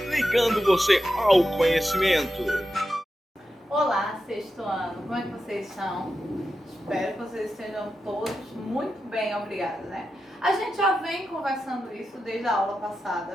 ligando você ao conhecimento. Olá, sexto ano, como é que vocês estão? Espero que vocês estejam todos muito bem, obrigada, né? A gente já vem conversando isso desde a aula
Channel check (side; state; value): both; normal; correlation 0.89